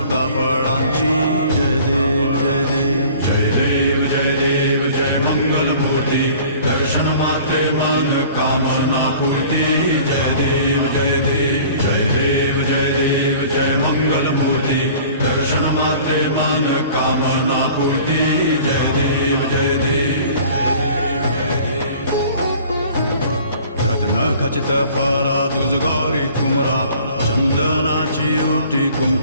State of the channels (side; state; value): both; inverted; correlation -0.48